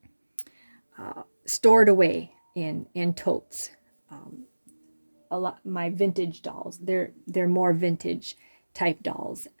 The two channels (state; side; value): inverted; both; correlation -1.00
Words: stored away in totes. A lot my vintage dolls. They're more vintage type dolls,